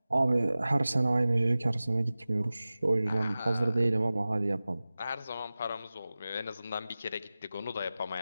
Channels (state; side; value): inverted; both; correlation -0.97